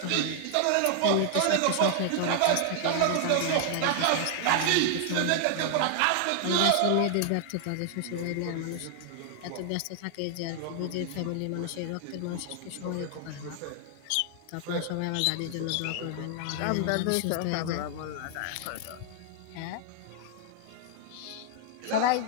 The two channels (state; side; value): different; both; correlation 0.00